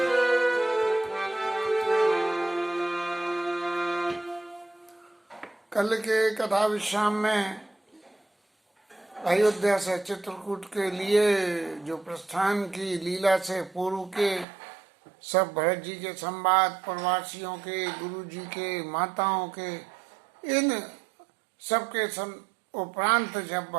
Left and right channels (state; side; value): drops out; left; at 14.5 s